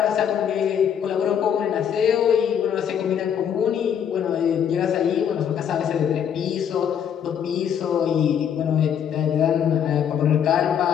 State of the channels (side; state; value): right; quieter; 8.5 dB